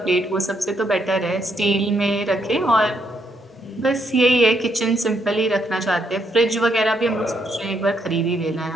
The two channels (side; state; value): both; normal; correlation 0.75